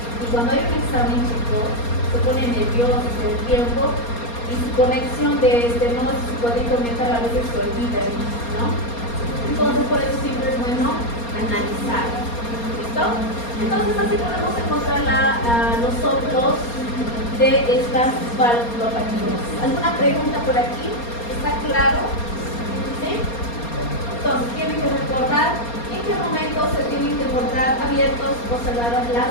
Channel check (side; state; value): right; late; 4.3 ms